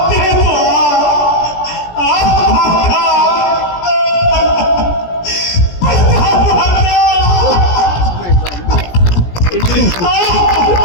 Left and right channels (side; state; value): right; late; 17 ms